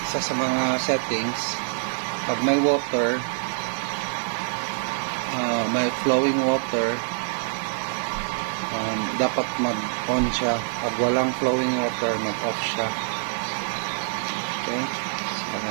sa mga settings, pag may water, may flowing water, dapat mag-on siya. Pag walang flowing water, mag-off siya. Okay, so,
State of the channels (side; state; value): left; silent; digital silence